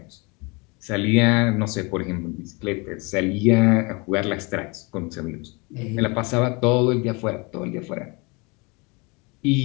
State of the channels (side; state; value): right; quieter; 28.5 dB